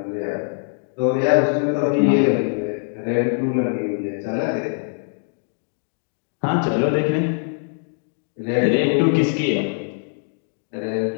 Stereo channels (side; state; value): right; silent; digital silence